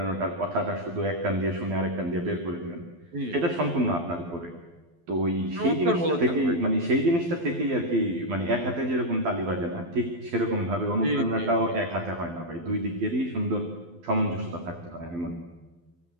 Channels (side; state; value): left; late; 12 ms